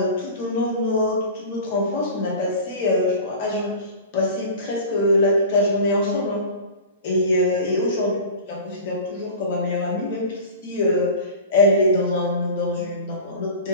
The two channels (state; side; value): inverted; both; correlation -0.36